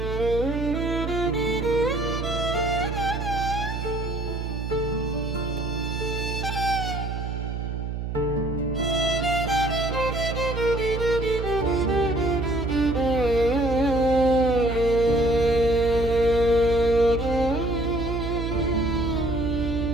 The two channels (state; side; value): noise; right; hum, 4 dB below the sound